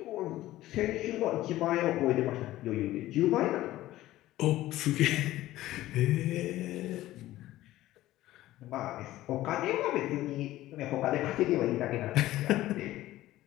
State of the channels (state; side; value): quieter; right; 15.6 dB